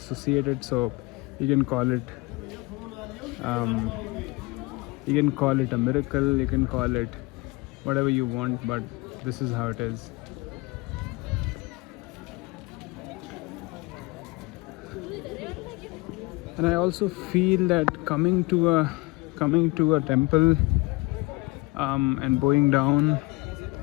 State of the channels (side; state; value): right; quieter; 24.2 dB